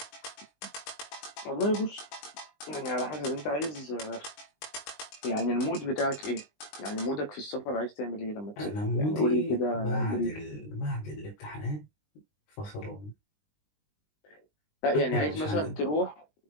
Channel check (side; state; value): right; late; 20 ms